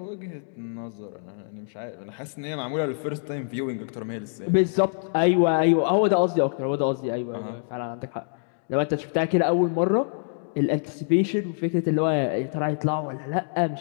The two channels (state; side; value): silent; right; digital silence